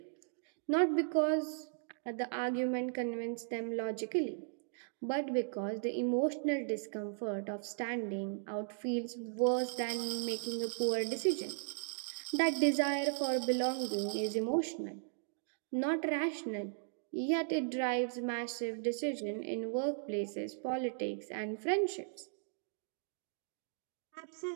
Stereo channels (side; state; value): left; silent; digital silence